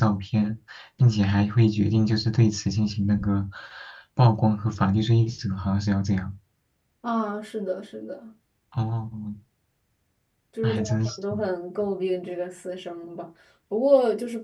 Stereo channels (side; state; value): both; identical; correlation 1.00